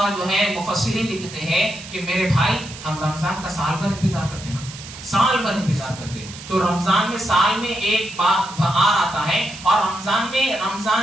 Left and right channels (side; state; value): right; noise; hiss, 14 dB below the sound